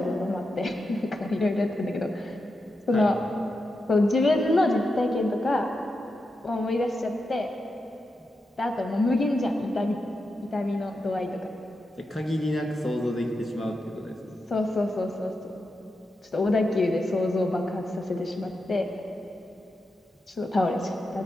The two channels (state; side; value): normal; both; correlation 0.88